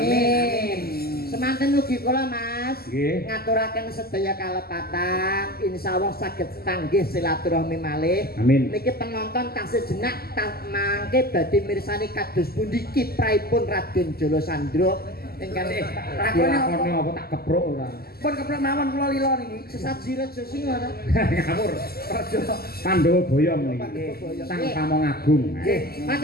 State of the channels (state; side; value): late; right; 0.45 ms